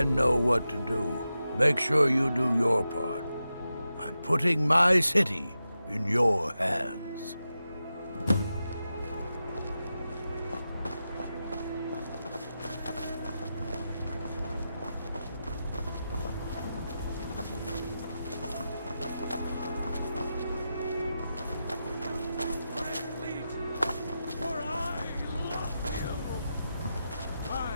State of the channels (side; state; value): both; inverted; correlation -0.90